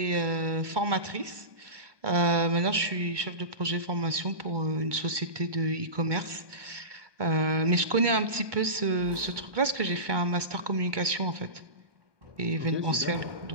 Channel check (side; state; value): left; late; 1.2 ms